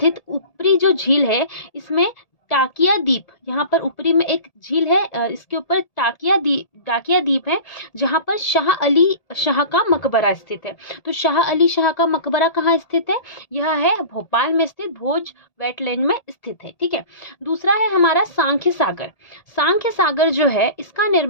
ऊपरी जो झील है, इसमें टाकिया द्वीप, यहाँ पर ऊपरी में एक झील है, इसके ऊपर टाकिया द्वीप है, जहाँ पर शाह अली शाह का मकबरा स्थित है। तो शाह अली शाह का मकबरा कहाँ स्थित है, यह है भोपाल में स्थित भोज वेटलैंड में स्थित है। ठीक है, दूसरा है हमारा सांख्य सागर। सांख्य सागर जो है इसका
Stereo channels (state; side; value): late; right; 1.8 ms